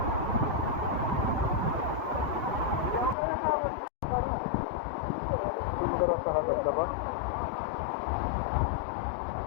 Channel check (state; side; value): drops out; right; at 3.2 s